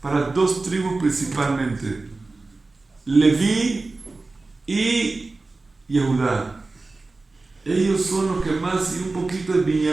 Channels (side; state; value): left; quieter; 3.5 dB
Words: dos tribus principalmente: Leví y Yehudá. Ellos son los que más, y un poquito de